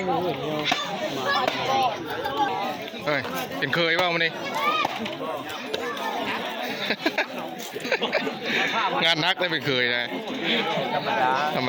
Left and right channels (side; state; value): both; identical; correlation 1.00